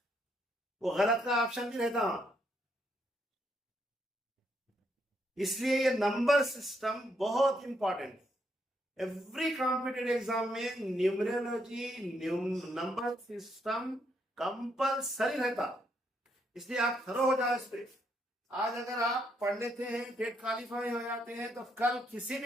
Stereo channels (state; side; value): normal; both; correlation 0.75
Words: वो गलत का ऑप्शन भी रहता, इसलिए ये नंबर सिस्टम बहुत इंपॉर्टेंट है। एवरी कॉम्पिटेटिव एग्जाम में न्यूमरोलॉजी नंबर सिस्टम कंपलसरी रहता, इसलिए आप थरो हो जाओ इस पे। आज अगर आप पढ़ लेते हैं, टेट क्वालिफाई हो जाते हैं, तो कल किसी